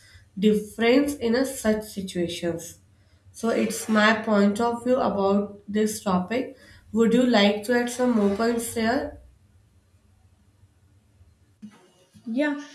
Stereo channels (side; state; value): both; identical; correlation 1.00